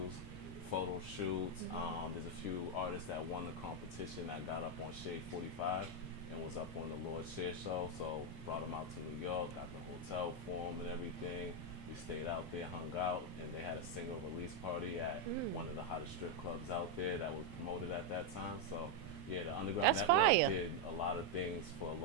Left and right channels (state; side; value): normal; both; correlation 0.01